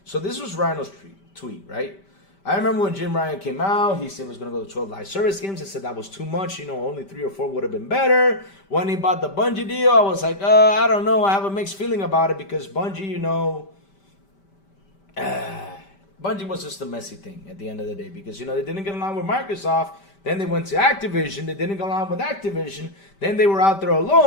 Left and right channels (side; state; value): right; late; 5.1 ms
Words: So this was Rhino's tweet, right? I remember when Jim Ryan came out, he said he was going to go to 12 live service games. I said that was too much. Only 3 or 4 would have been better. When he bought the Bungie deal, I was like, I don't know. I have a mixed feeling about it because Bungie, Bungie was just a messy thing at the end of the day because, they didn't get along with Microsoft. Then they went to Activision. They didn't go along with Activision. Then they were out there